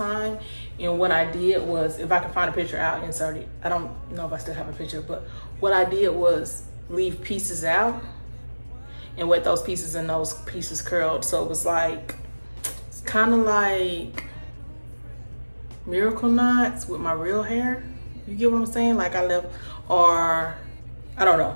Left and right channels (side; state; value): both; inverted; correlation -1.00